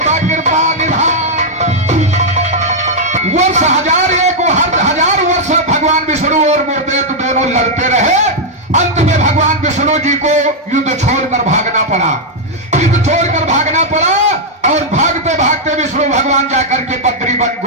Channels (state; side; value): normal; both; correlation -0.03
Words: कृपा निधान। वर्ष हजार एक हजार वर्ष भगवान विष्णु और मूर्देव दोनों लड़ते रहे। अंत में भगवान विष्णु जी को युद्ध छोड़कर भागना पड़ा, युद्ध छोड़कर भागना पड़ा। और भागते भागते विष्णु भगवान जाकर के बद्री वन